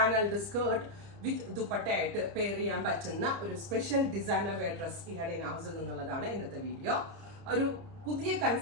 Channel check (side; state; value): left; late; 30 ms